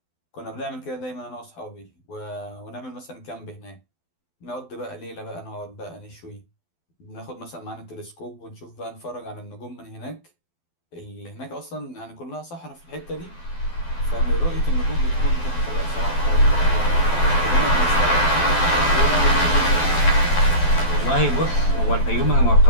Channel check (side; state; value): right; late; 12 ms